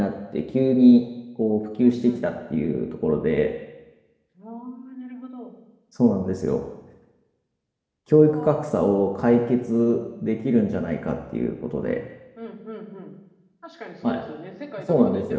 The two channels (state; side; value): identical; both; correlation 1.00